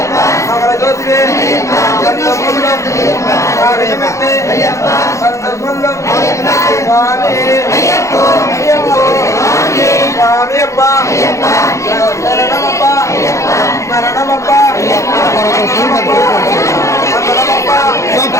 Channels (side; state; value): right; late; 0.15 ms